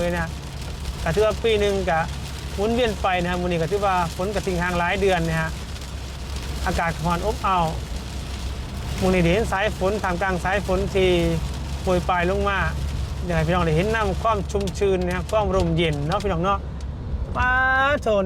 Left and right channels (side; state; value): both; identical; correlation 1.00